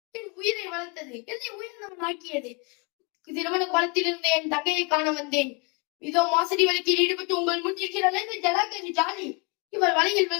என் உயிரை வளர்த்தது, என்னை உயிரினம் ஆக்கியது. திருமண குளத்திலிருந்து என் தங்கையை காண வந்தேன். இதோ மோசடி வழக்கில் ஈடுபட்டு உங்கள் முன் இருக்கிறாள் இந்த ஜலாக்கி ஜாலி. இவள் வலையில்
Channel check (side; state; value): right; quieter; 30.7 dB